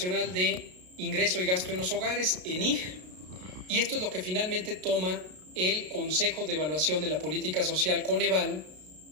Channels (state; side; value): late; left; 33 ms